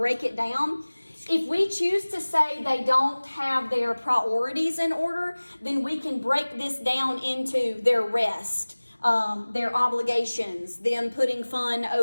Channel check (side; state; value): both; inverted; correlation -1.00